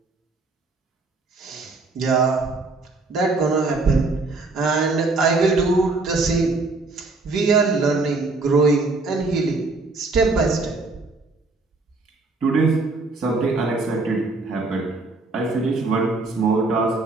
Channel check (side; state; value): left; quieter; 3.5 dB